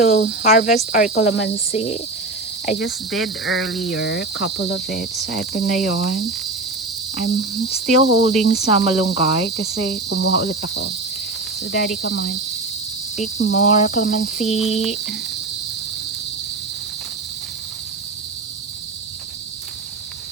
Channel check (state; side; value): quieter; left; 3.1 dB